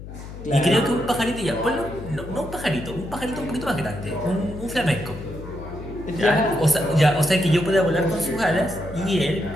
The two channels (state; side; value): noise; left; hum, 12 dB below the sound